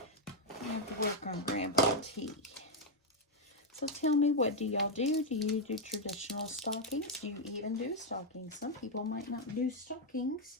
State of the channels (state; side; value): normal; both; correlation 0.00